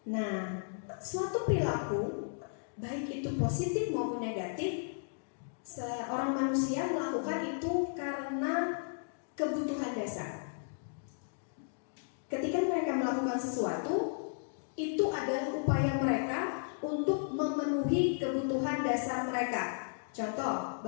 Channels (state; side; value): silent; right; digital silence